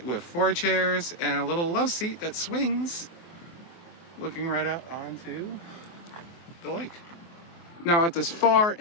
with 4 chairs, and a little love seat that swings, looking right out onto the lake. Now at this far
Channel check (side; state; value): right; late; 23 ms